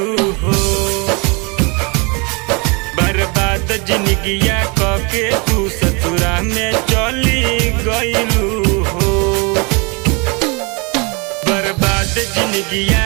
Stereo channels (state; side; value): quieter; left; 30.4 dB